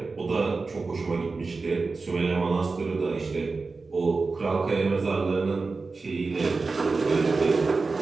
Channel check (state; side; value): quieter; left; 4.0 dB